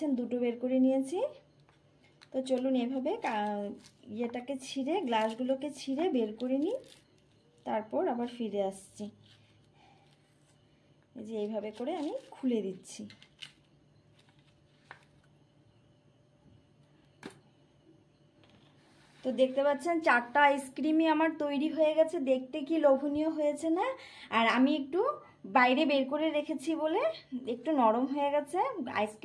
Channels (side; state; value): both; identical; correlation 1.00